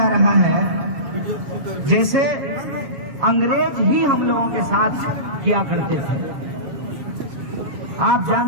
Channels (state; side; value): late; left; 6.8 ms